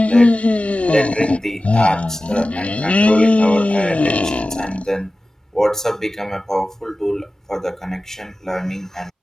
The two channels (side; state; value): both; normal; correlation 0.96